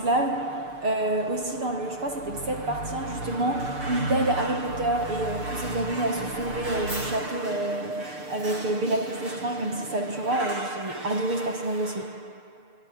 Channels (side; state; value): left; late; 6.7 ms